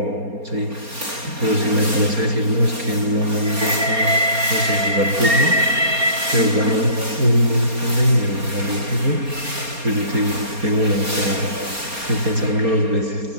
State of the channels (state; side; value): late; left; 4.3 ms